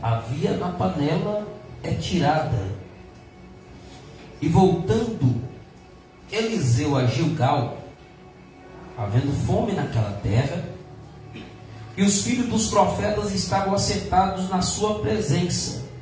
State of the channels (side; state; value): both; identical; correlation 1.00